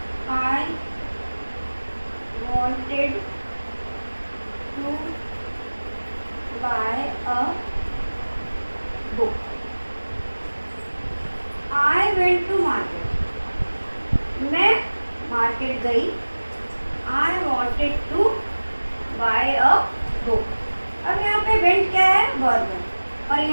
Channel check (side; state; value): both; inverted; correlation -1.00